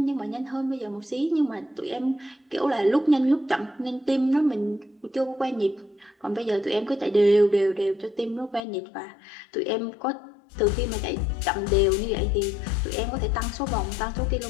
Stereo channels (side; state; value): right; drops out; at 8.6 s